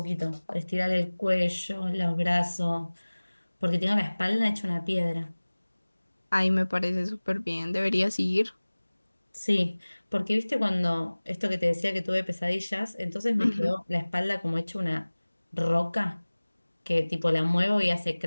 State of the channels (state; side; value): inverted; both; correlation -1.00